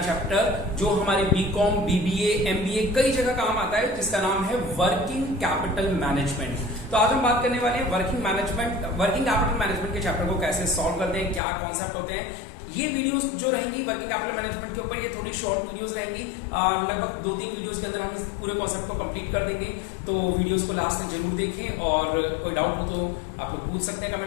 चैप्टर जो हमारे बीकॉम, बीबीए, एमबीए कई जगह काम आता है, जिसका नाम है वर्किंग कैपिटल मैनेजमेंट। तो आज हम बात करने वाले हैं वर्किंग कैपिटल मैनेजमेंट के चैप्टर को कैसे सॉल्व करते हैं, क्या कॉन्सेप्ट होते हैं। ये वीडियोस जो रहेंगी वर्किंग कैपिटल मैनेजमेंट के ऊपर, ये थोड़ी शॉर्ट वीडियोस रहेंगी। लगभग 2-3 वीडियोस के अंदर हम इस पूरे कॉन्सेप्ट को कंप्लीट कर देंगे। तो वीडियोस को लास्ट तक जरूर देखें और कोई डाउट हो तो आप लोग पूछ सकते हैं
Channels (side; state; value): right; drops out; at 11.4 s